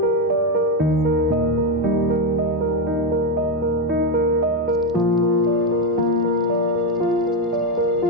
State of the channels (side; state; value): both; normal; correlation 0.08